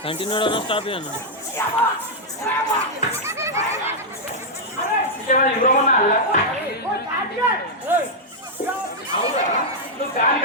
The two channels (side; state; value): both; normal; correlation -0.05